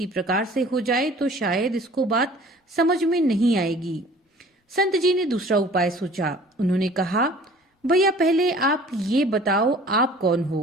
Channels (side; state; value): both; normal; correlation 0.49